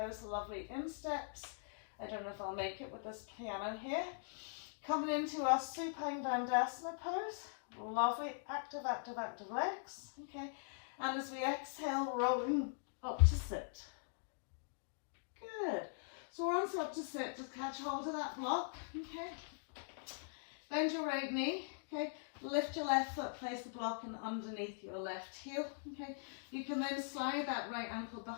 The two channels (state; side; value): silent; right; digital silence